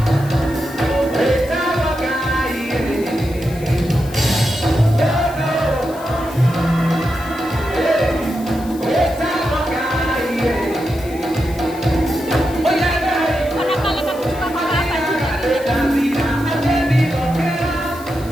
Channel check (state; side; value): noise; left; hiss, 19 dB below the sound